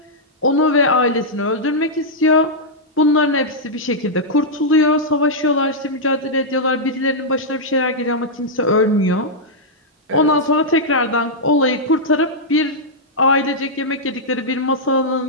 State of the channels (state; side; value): normal; both; correlation -0.07